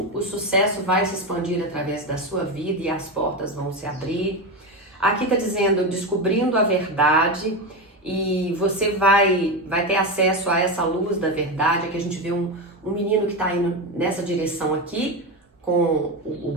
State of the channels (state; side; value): normal; both; correlation 0.16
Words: o sucesso vai se expandir através da sua vida e as portas vão se abrir. Aqui está dizendo, descobrindo a verdade, e você vai ter acesso a essa luz da verdade. Aqui a gente vê um menino que está indo nessa direção aqui, com o